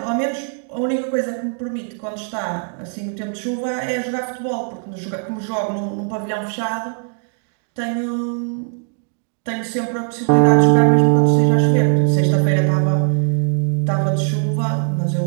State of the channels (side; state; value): left; silent; 56 dB below the other